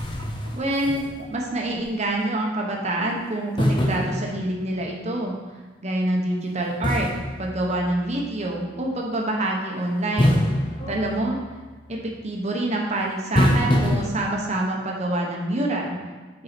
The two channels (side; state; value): both; normal; correlation 0.66